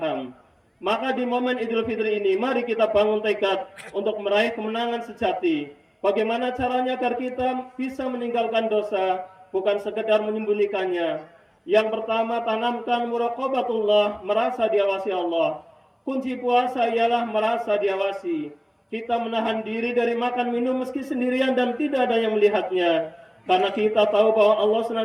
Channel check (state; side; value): identical; both; correlation 1.00